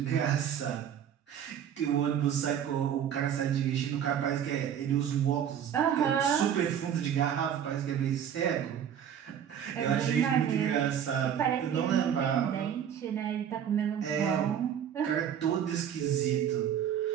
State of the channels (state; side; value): quieter; left; 9.1 dB